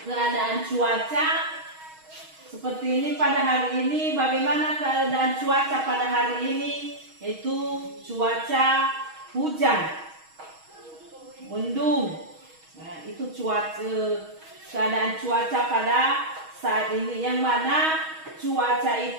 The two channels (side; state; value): left; late; 6.3 ms